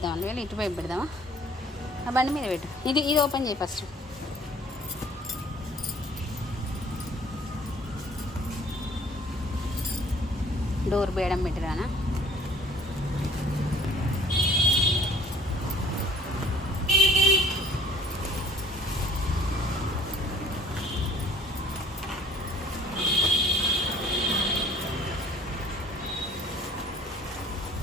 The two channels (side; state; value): both; normal; correlation 0.54